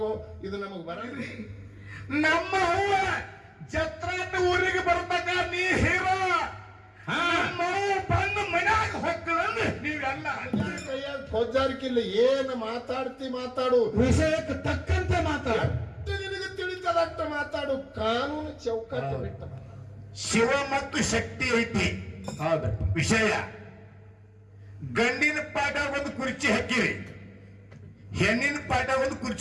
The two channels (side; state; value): both; identical; correlation 1.00